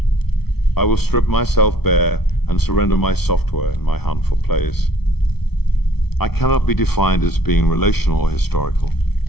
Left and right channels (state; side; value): late; right; 0.97 ms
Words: I will strip myself bare and surrender my software in my hunt for place. I cannot be defined as being relational or historical.